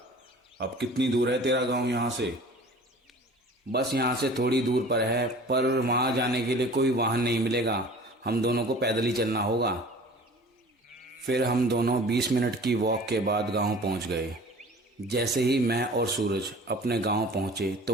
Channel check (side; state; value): both; normal; correlation 0.44